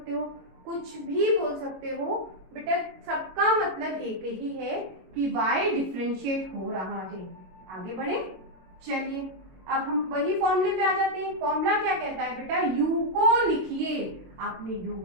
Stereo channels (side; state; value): left; late; 22 ms